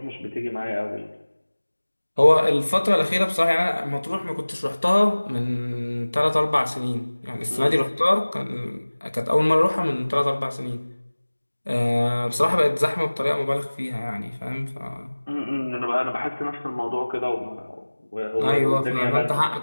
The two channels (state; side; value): inverted; both; correlation -1.00